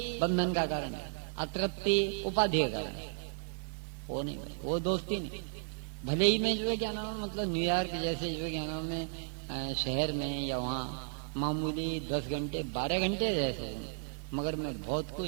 बंधन का कारण है, अतृप्ति उपाधि का कारण है। वो नहीं, वो दोस्ती नहीं। भले ही में जो है क्या नाम, मतलब न्यूयॉर्क जैसे जो है क्या नाम में शहर में या वहाँ मामूली 10 घंटे 12 घंटे रह सकूँ, मगर मैं बहुत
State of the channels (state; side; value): silent; left; digital silence